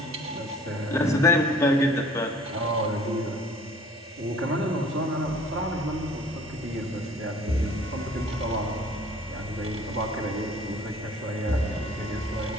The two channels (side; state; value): both; normal; correlation 0.52